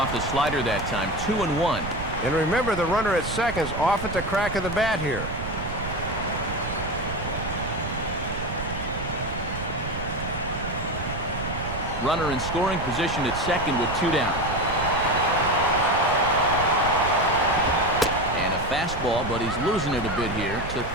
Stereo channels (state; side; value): noise; right; rumble, 7 dB below the sound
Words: the slider that time, 2-1. And remember, the runner at second's off at the crack of the bat here. Runner in scoring position at second with 2 down. And a fastball, but he's losing it a bit here to